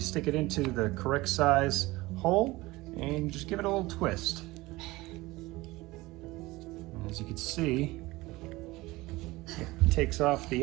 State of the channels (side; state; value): left; quieter; 20.3 dB